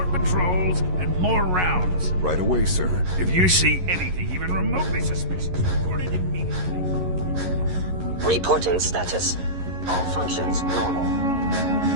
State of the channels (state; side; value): late; left; 11 ms